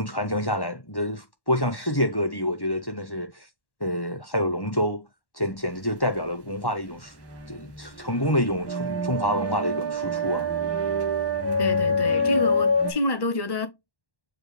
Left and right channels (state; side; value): late; right; 1.1 ms